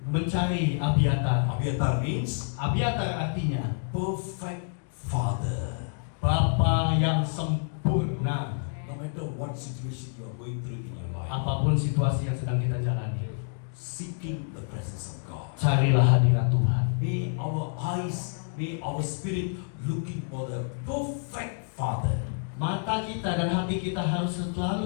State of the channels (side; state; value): right; silent; 59 dB below the other